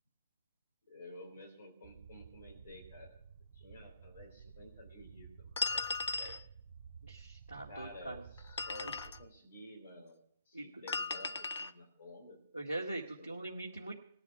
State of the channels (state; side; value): inverted; both; correlation -0.77